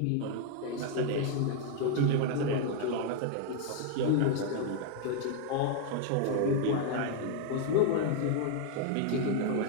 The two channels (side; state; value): both; different; correlation 0.00